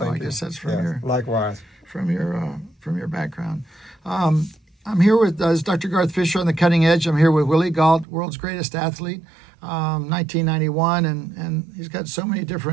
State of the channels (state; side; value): drops out; left; at 8.1 s